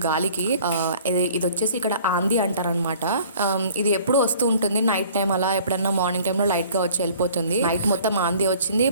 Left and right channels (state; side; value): inverted; both; correlation -0.52